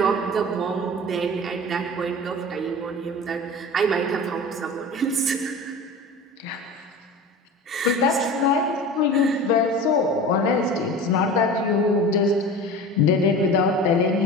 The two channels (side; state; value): both; normal; correlation 0.35